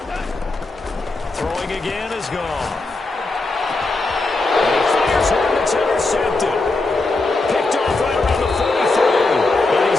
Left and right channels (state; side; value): quieter; right; 3.3 dB